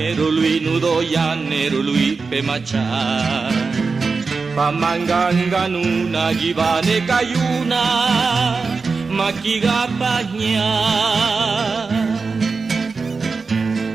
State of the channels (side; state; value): left; quieter; 4.5 dB